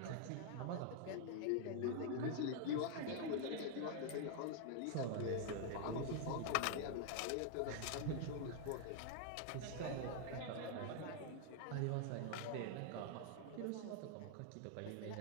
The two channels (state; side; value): different; both; correlation 0.00